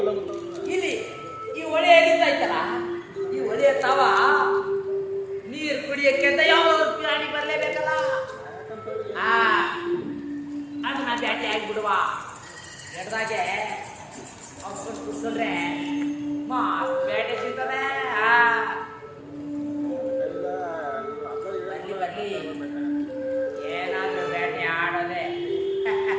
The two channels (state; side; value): identical; both; correlation 1.00